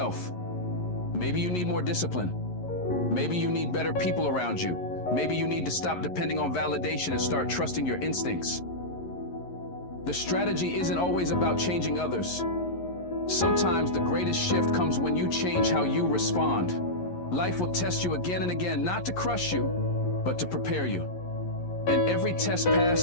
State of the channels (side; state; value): right; late; 11 ms